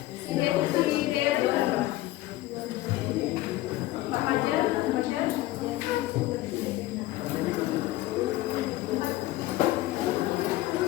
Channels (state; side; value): quieter; right; 16.7 dB